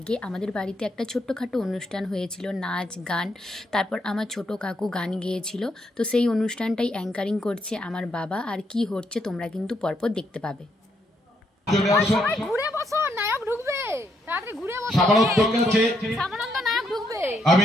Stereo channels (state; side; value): normal; both; correlation 0.76